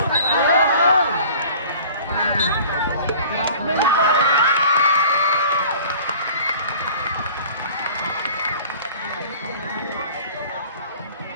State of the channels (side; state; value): both; inverted; correlation -0.45